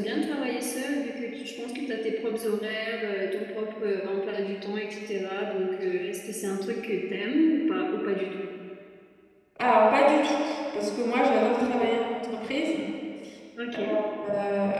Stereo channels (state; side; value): identical; both; correlation 1.00